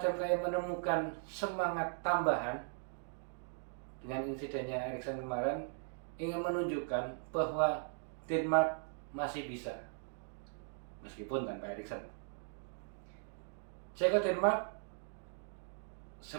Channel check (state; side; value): silent; left; digital silence